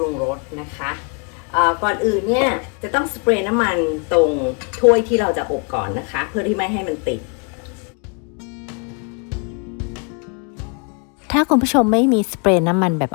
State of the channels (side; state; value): right; quieter; 36.2 dB